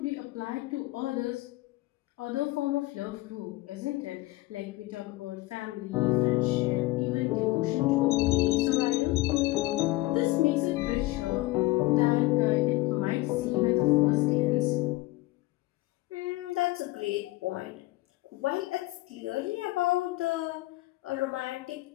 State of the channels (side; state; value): right; quieter; 19.7 dB